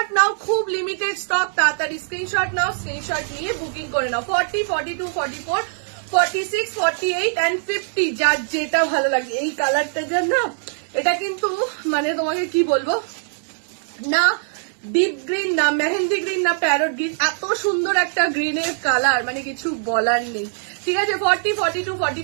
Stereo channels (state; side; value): silent; left; digital silence